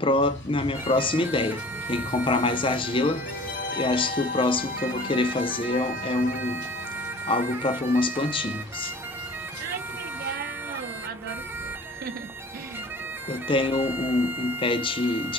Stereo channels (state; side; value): normal; both; correlation 0.45